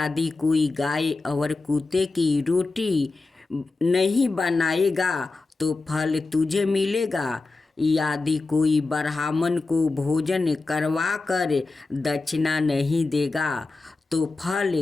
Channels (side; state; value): right; quieter; 3.6 dB